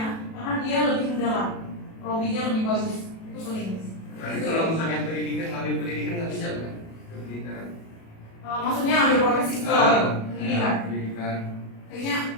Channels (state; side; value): late; right; 37 ms